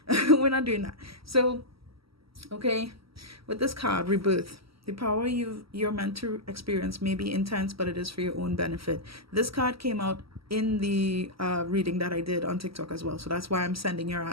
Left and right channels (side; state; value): left; late; 0.75 ms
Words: we're not doing that. So, okay, with this card, rebirth, the power you're meant to experience may be intense, but it is for your own benefit. This card came out in the reading that I did on TikTok as well, so that's why I'm sending your